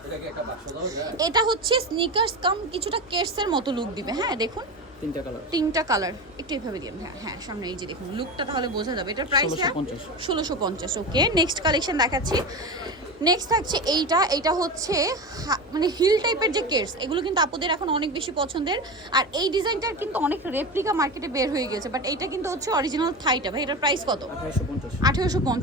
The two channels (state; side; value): normal; both; correlation 0.24